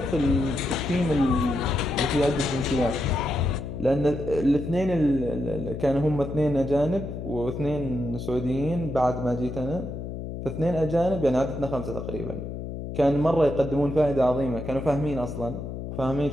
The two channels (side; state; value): left; noise; hum, 7 dB below the sound